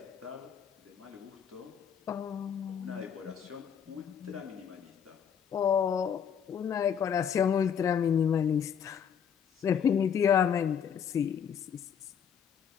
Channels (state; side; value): quieter; right; 7.9 dB